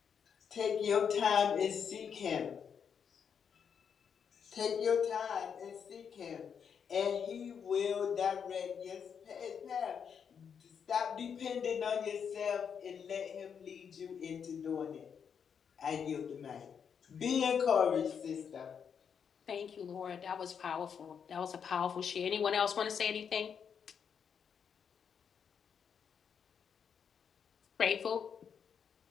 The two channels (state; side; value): quieter; right; 7.2 dB